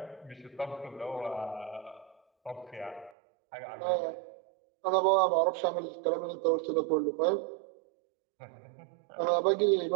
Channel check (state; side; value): drops out; left; at 3.1 s